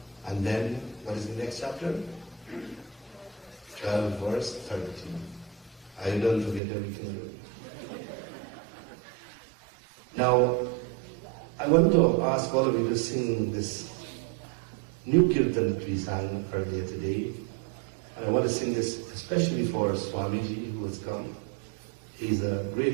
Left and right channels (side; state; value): left; drops out; at 6.6 s